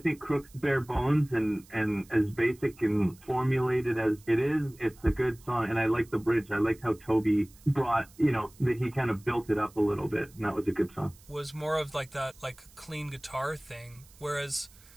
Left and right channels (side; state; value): right; noise; hiss, 25 dB below the sound